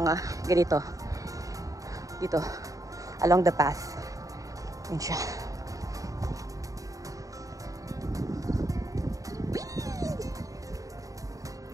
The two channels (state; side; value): late; left; 0.16 ms